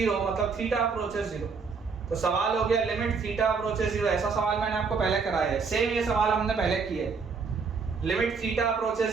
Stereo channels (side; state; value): left; quieter; 5.1 dB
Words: मतलब थीटा अप्रोचेस 0। तो सवाल हो गया लिमिट थीटा अप्रोचेस 0। ऐसा सवाल मैंने आपको पहले कराया है, सेम ये सवाल हमने पहले किया है। Limit theta